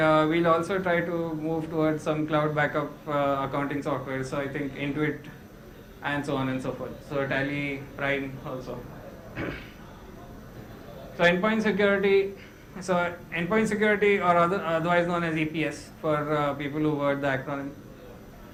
also try to move towards some cloud backup accounting software. So I think Intuit and so on and so forth. So Tally Prime also. So endpoint security, or otherwise known as EPS for people who word the acronym.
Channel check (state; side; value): identical; both; correlation 1.00